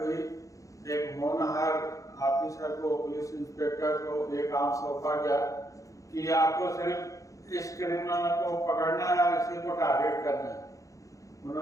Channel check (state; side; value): late; right; 0.16 ms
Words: हुई, एक होनहार ऑफिसर को, पुलिस इंस्पेक्टर को ये काम सौंपा गया कि आपको सिर्फ इस क्रिमिनल को पकड़ना है और इसी को टारगेट करना है।